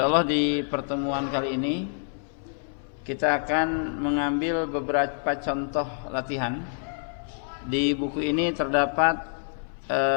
di pertemuan kali ini kita akan mengambil beberapa contoh latihan. Di buku ini terdapat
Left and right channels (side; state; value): right; silent; 59 dB below the other